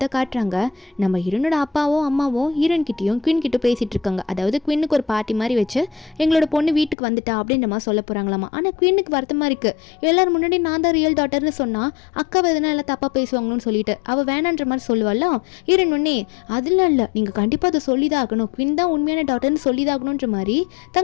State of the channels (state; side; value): drops out; right; at 7.0 s